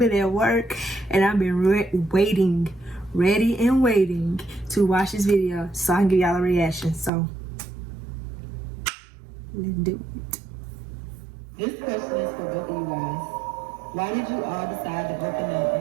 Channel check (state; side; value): drops out; left; at 7.1 s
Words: at work and I've been waiting, ready and waiting to watch this video so I can give y'all a reaction. So let's do it. This question is for both of you guys. Why did you all decide to open up